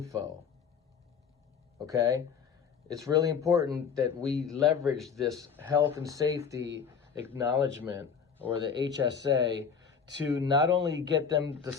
Okay, it's really important that we leverage this health and safety acknowledgement, or the HSA, to not only get them to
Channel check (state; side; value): quieter; right; 6.5 dB